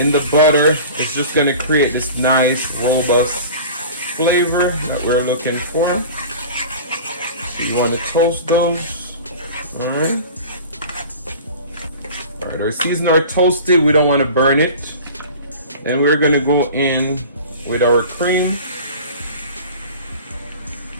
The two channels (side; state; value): both; inverted; correlation -0.38